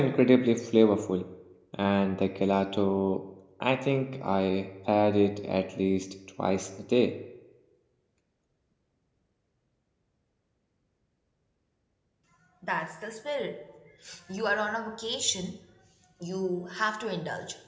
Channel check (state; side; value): identical; both; correlation 1.00